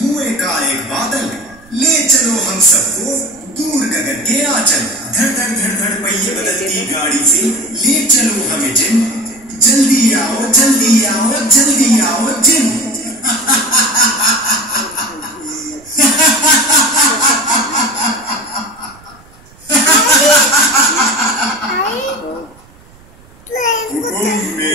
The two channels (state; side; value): noise; right; rumble, 26 dB below the sound